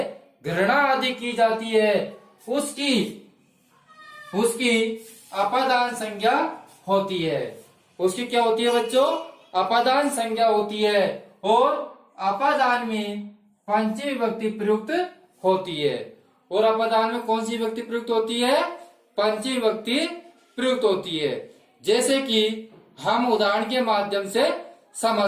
गणना आदि की जाती है, उसकी अपादान संज्ञा होती है। उसकी क्या होती है बच्चों, अपादान संज्ञा होती है और अपादान में पंचमी विभक्ति प्रयुक्त होती है। और अपादान में कौन सी विभक्ति प्रयुक्त होती है, पंचमी विभक्ति प्रयुक्त होती है। जैसे कि हम उदाहरण के माध्यम से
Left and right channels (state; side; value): identical; both; correlation 1.00